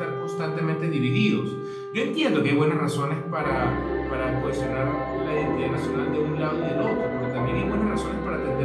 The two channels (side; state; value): both; identical; correlation 1.00